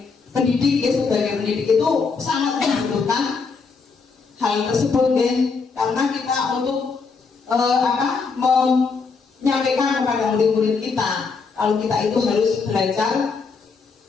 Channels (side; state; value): right; quieter; 4.9 dB